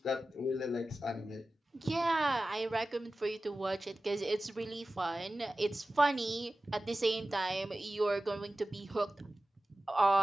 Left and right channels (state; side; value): normal; both; correlation 0.96